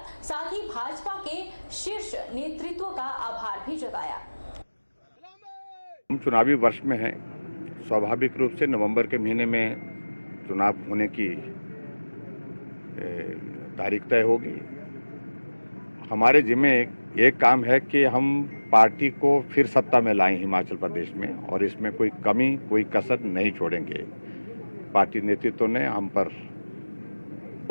साथ ही भाजपा के शीर्ष नेतृत्व का आभार भी जताया। हम चुनावी वर्ष में हैं, स्वाभाविक रूप से नवंबर के महीने में चुनाव होने की तारीख तय होगी। हमारे जिम्मे एक काम है कि हम पार्टी को फिर सत्ता में लाएं हिमाचल प्रदेश में, और इसमें कोई कमी, कोई कसर नहीं छोड़ेंगे। पार्टी नेतृत्व ने हम पर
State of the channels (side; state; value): both; inverted; correlation -1.00